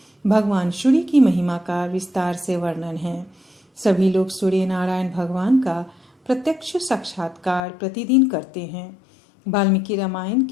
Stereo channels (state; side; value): drops out; right; at 7.6 s